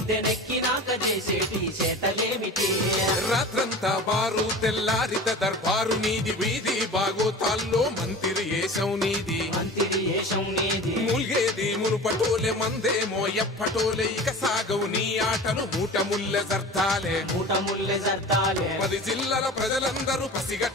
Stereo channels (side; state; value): both; normal; correlation 0.36